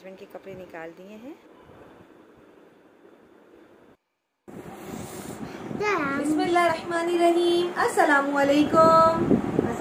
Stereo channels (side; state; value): both; identical; correlation 1.00